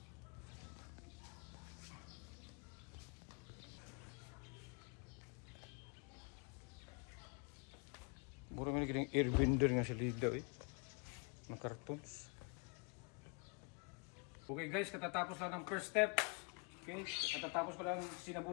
Mura mo naging airbender nga sa lida ng cartons. Okay guys, katatapos lang ng first step. Okay, katatapos ko lang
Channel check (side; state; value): right; quieter; 34.0 dB